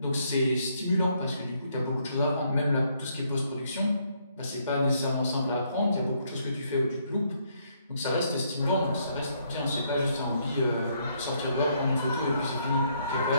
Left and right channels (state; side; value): inverted; both; correlation -0.71